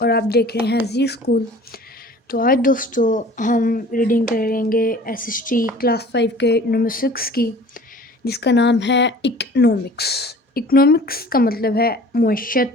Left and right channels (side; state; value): both; normal; correlation 0.46